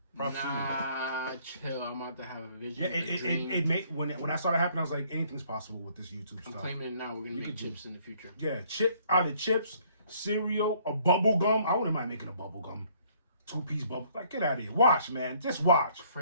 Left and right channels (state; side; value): inverted; both; correlation -0.62